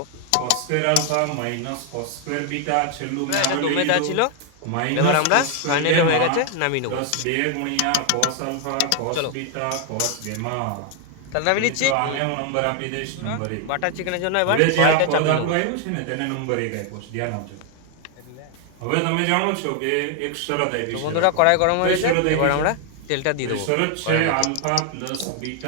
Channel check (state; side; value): different; both; correlation 0.00